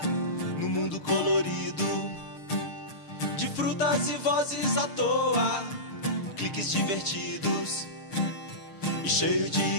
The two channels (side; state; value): right; late; 6.6 ms